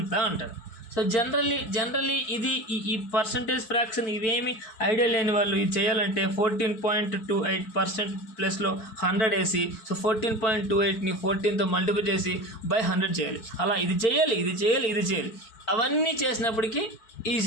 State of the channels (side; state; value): right; late; 4.6 ms